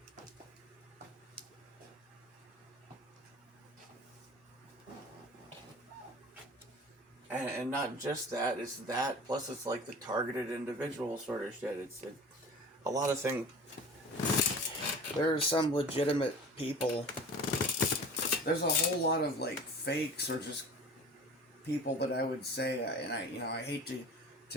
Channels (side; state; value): both; normal; correlation 0.40